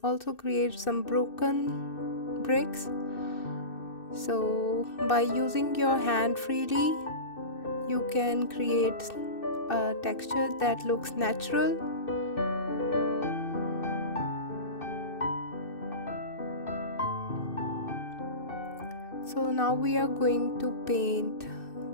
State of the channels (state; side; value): late; right; 2.6 ms